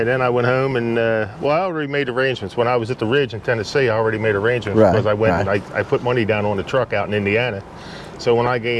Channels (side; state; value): both; identical; correlation 1.00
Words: then I went home and, well, I already made arrangements. When I was at the Ridge in Tennessee, I already made arrangements Right, because I went right. and I put money down on the truck out in Indiana. So when